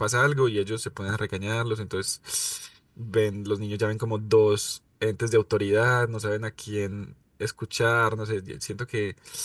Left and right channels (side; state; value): both; identical; correlation 1.00